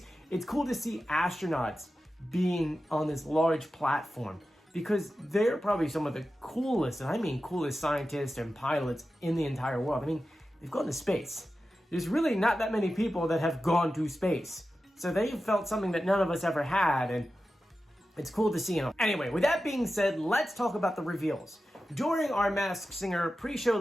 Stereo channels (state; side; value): normal; both; correlation 0.93